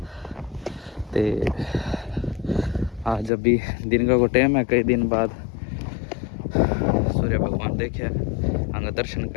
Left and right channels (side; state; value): right; drops out; at 3.3 s